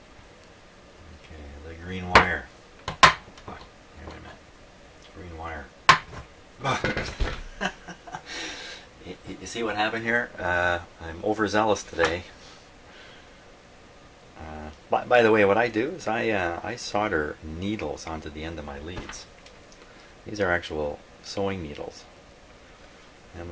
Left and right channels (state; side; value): identical; both; correlation 1.00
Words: Okay, the green wire. Oh, wait a minute. Green wire. You see what happened here? I'm overzealous today. By the way, what I do is I solder needles onto the end of my leads. These are actual sewing needles,